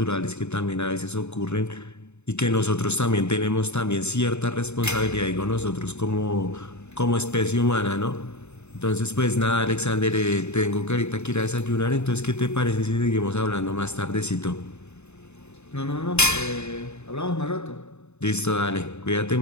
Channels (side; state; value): right; late; 0.82 ms